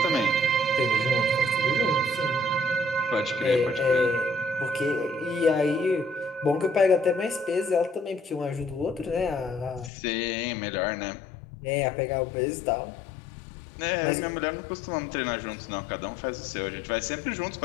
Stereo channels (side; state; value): right; drops out; at 9.9 s